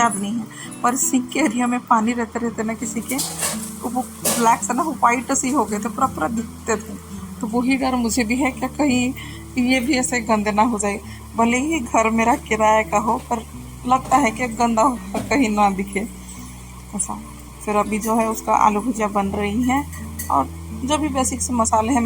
नहीं है, पर सिंक के एरिया में पानी रहते रहते ना किसी के, तो वो ब्लैक से ना वो वाइट सी हो गए थे, पूरा पूरा दिखते थे। तो वही डर मुझे भी है कि कहीं ये भी ऐसे गंदे ना हो जाए। भले ही घर मेरा किराए का हो, पर लगता है कि गंदा कहीं ना दिखे ऐसा। फिर अभी जो है उसका आलू भुजिया बन रही है, और जो भी बेसिक से मसाले हैं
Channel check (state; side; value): identical; both; correlation 1.00